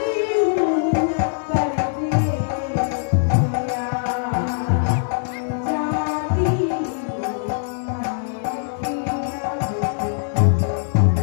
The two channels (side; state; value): right; silent; 60 dB below the other